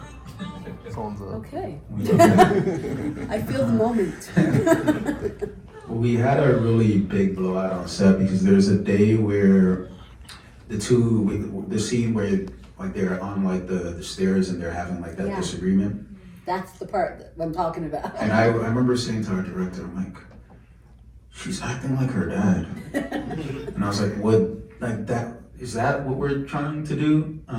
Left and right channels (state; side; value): identical; both; correlation 1.00